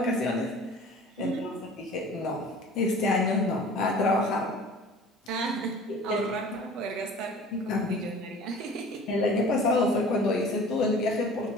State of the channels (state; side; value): normal; both; correlation 0.44